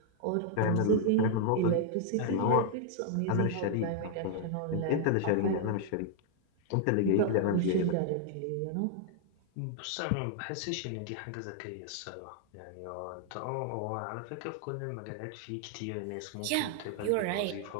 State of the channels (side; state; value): both; different; correlation 0.00